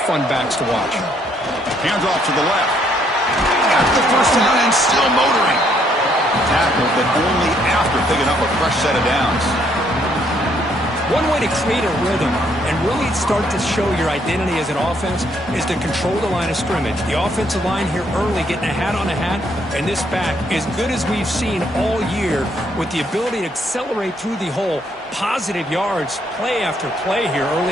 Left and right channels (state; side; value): normal; both; correlation 0.69